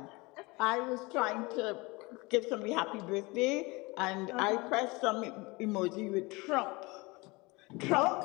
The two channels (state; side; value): quieter; right; 24.6 dB